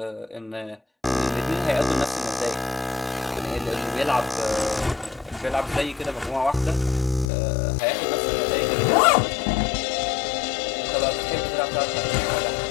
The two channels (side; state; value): right; drops out; at 7.2 s